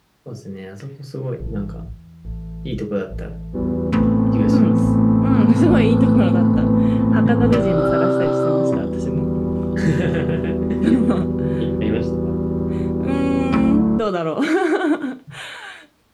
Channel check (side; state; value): both; identical; correlation 1.00